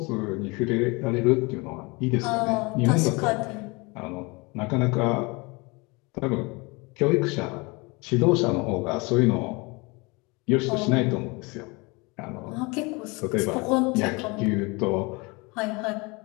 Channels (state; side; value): quieter; right; 27.0 dB